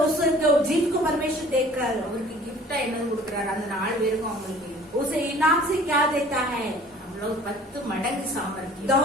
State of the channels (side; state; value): both; normal; correlation 0.50